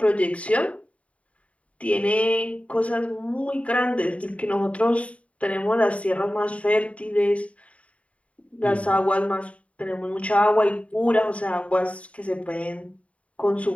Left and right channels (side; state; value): right; late; 0.065 ms